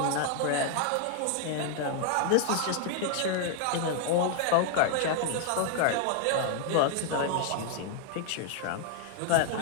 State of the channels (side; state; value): both; different; correlation 0.00